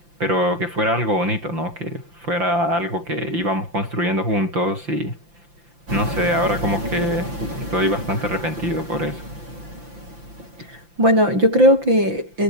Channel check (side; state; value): left; late; 5.8 ms